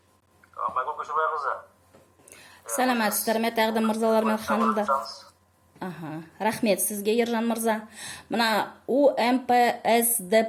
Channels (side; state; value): both; identical; correlation 1.00